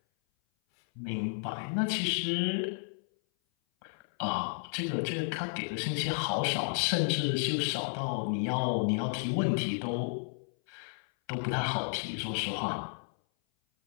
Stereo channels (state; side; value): silent; right; 56 dB below the other